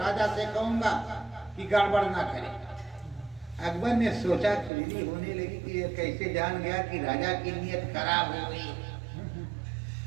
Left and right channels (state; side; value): drops out; left; at 4.7 s